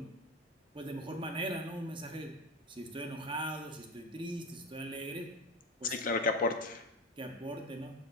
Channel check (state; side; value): normal; both; correlation 0.21